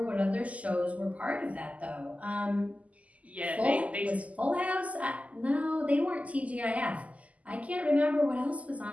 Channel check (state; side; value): late; left; 0.071 ms